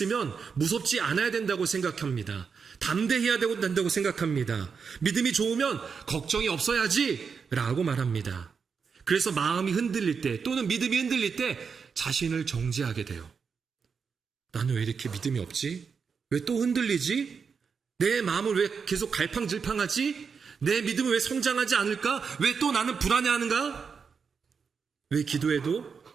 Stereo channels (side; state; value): left; quieter; 5.8 dB